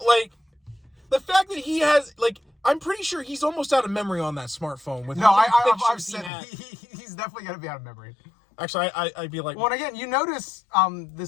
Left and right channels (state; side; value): drops out; right; at 6.3 s